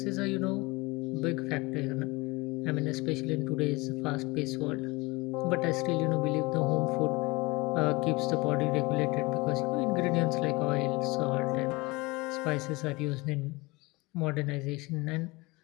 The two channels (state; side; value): quieter; right; 23.8 dB